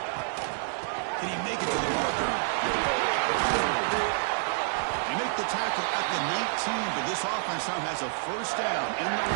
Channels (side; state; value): left; silent; digital silence